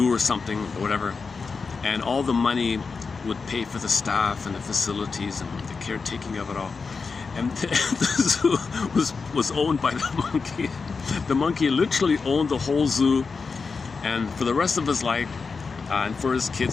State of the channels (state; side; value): quieter; right; 4.8 dB